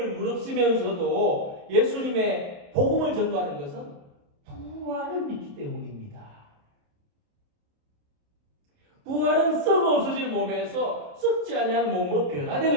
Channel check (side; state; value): left; late; 28 ms